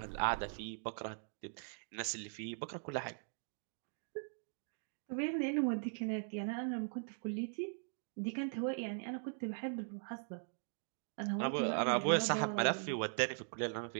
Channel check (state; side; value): silent; left; digital silence